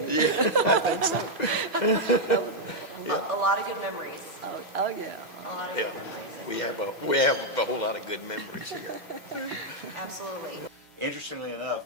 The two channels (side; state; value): both; normal; correlation -0.02